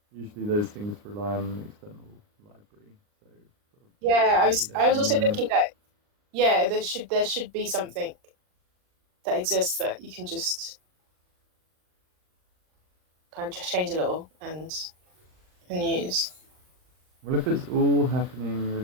Usually those things rely on an external library. So yeah, I was also thinking that there should be something that exists that you can just kind of just change a little and use. Well, if it's all happening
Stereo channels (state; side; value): late; left; 39 ms